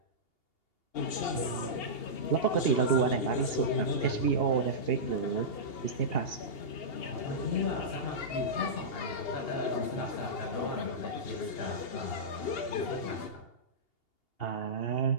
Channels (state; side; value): late; right; 2.8 ms